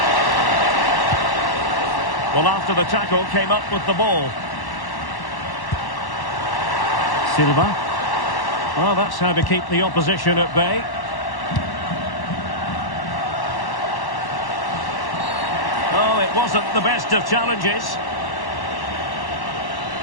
Well, after the tackle, came up with the ball. Silva. Well, that's how to keep the opposition at bay. Oh, it wasn't the best of challenges.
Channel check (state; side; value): late; right; 1.1 ms